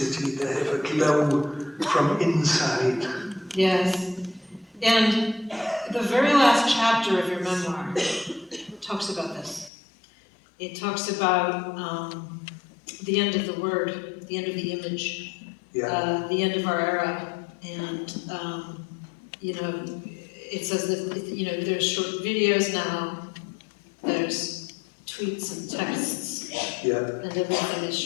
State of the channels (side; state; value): right; drops out; at 9.7 s